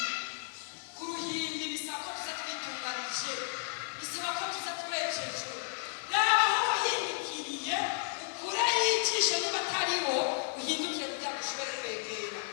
ku ruhimbi bisaba ko tuza twitunganije, bisaba ko tuza turekejwe. Raba aho wahindukiriye ukure yicisha niba atariho uhindukire kugira ngo ushobore kwegera.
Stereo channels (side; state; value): right; silent; 56 dB below the other